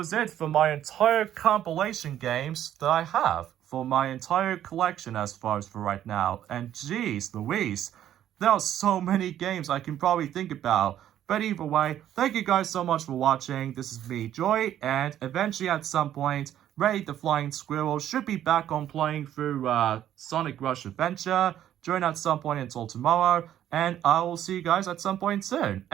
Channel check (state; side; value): quieter; left; 11.3 dB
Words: it for my entire compilation games that I have for my entire collection as far as for right now. And geez Louise, there are so many games I can probably think about. But either way, thank you guys so much for watching. This is me, Joy, and eventually at some point, Ray the Flying Squirrel should be back on playing through Sonic Rush Adventure during at some point until tomorrow, and I will see you guys at some point soon.